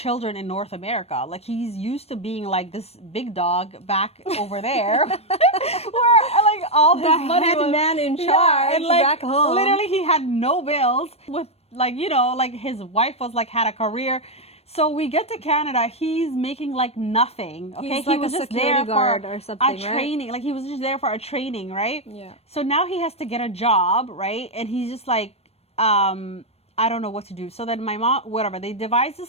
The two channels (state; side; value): late; right; 0.30 ms